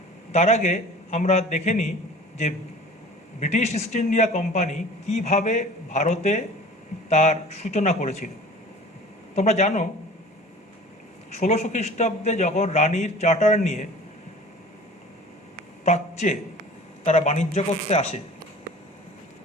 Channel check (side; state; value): both; normal; correlation 0.43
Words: তার আগে আমরা দেখে নিই যে ব্রিটিশ ইস্ট ইন্ডিয়া কোম্পানি কীভাবে ভারতে তার সূচনা করেছিল। তোমরা জানো 1600 খ্রিস্টাব্দে যখন রানীর চার্টার নিয়ে প্রাচ্যে তারা বাণিজ্য করতে আসে,